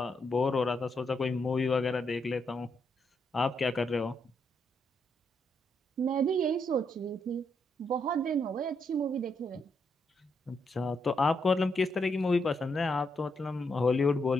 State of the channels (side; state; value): both; normal; correlation 0.79